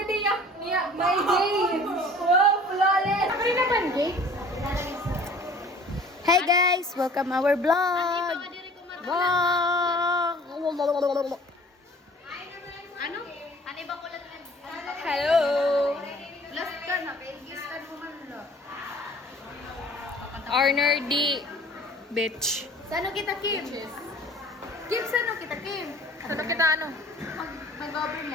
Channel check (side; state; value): both; normal; correlation 0.49